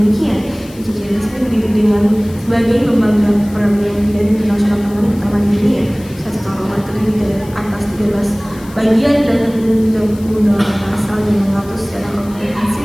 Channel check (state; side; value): noise; left; hiss, 22 dB below the sound